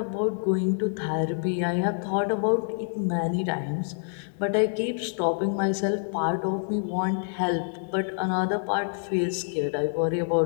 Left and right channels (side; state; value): right; silent; digital silence